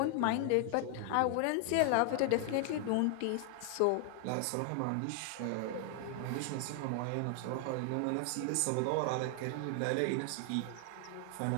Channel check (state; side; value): different; both; correlation 0.00